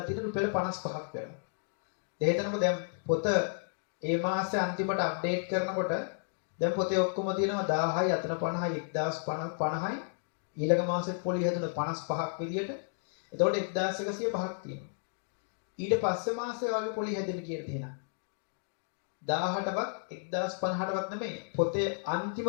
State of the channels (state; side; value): silent; right; digital silence